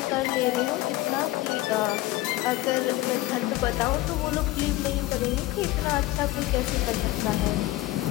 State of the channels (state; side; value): quieter; right; 17.6 dB